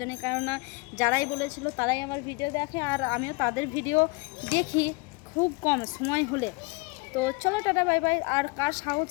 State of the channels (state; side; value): quieter; right; 27.8 dB